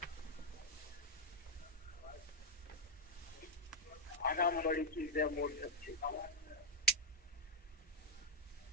आराम बड़ी चीज है, मोड़ सकते।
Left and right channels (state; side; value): normal; both; correlation 0.00